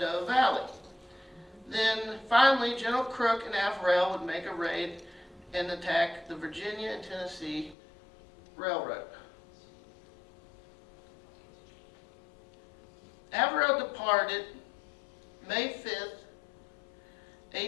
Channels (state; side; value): drops out; right; at 7.8 s